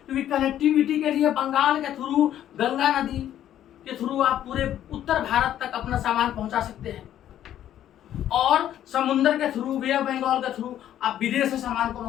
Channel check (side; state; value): right; quieter; 11.4 dB